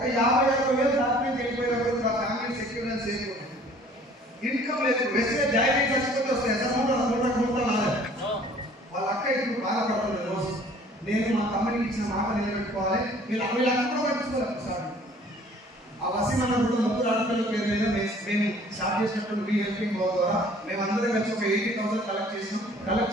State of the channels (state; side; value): normal; both; correlation 0.53